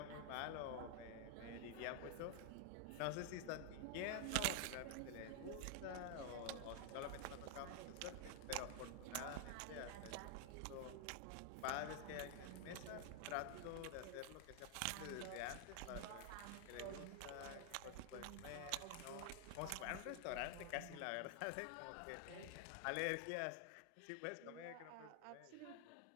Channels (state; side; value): different; both; correlation 0.00